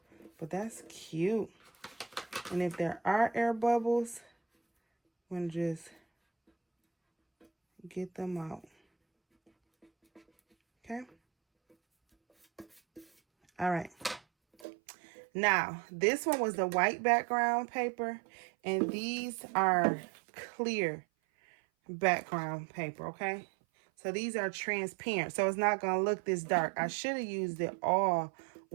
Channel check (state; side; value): drops out; left; at 14.7 s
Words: But that's cute. And if there are air bubbles, I'm going to just get them out. Okay. All right. Now, this one was the white background paper, and these are clear background paper, okay? So these are transparent, so it's not going to look this dark. I should have used it all